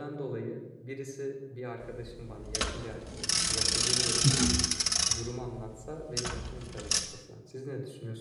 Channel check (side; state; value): both; identical; correlation 1.00